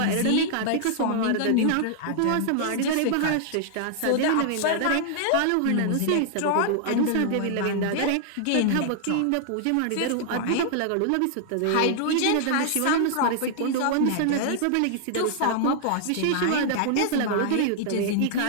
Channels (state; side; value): different; both; correlation -0.01